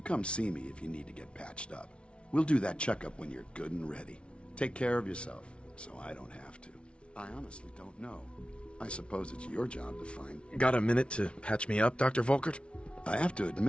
come see me if you need to get patched up. We'll do that checkup when you're good and ready. Take care of yourself, so I don't have to. I honestly don't know. I suppose it's your job to find... Got a minute to patch me up, Dr. Volkert? I have to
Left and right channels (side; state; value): right; late; 0.059 ms